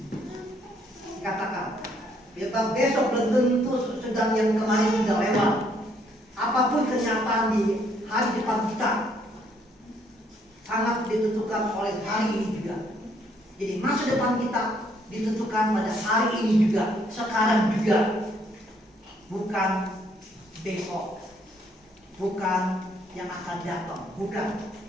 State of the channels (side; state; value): both; normal; correlation 0.68